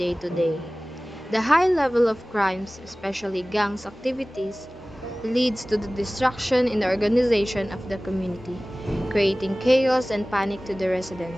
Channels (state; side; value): normal; both; correlation 0.98